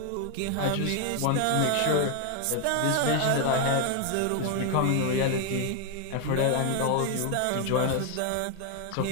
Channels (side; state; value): both; different; correlation 0.00